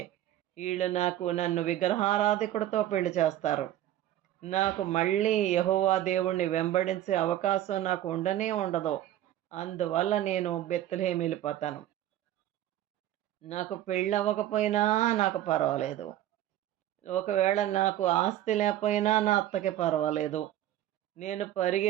ఈళ్ళు నన్ను విగ్రహారాధికుడితో పెళ్లి చేస్తారు. నాకు మళ్ళీ యెహోవా దేవుణ్ణి వెంబడించే అవకాశం నాకు ఉండనే ఉండదు. అందువల్ల నేను బెత్లెహేమ్ వెళ్ళిపోతాను. నాకు పెళ్ళవ్వకపోయినా నాకు పర్వాలేదు. ఒకవేళ నాకు ఆస్తి లేకపోయినా నా అత్తకి పర్వాలేదు. నేను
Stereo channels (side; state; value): left; quieter; 13.0 dB